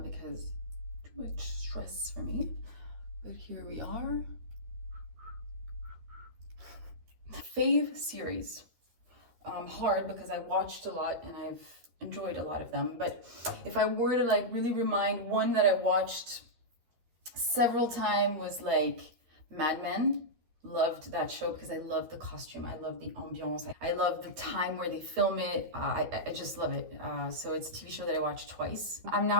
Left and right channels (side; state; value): left; late; 13 ms